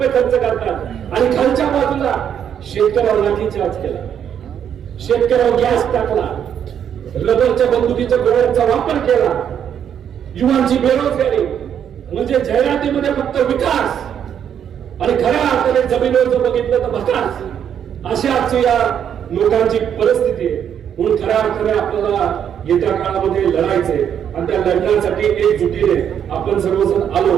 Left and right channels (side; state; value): left; quieter; 8.8 dB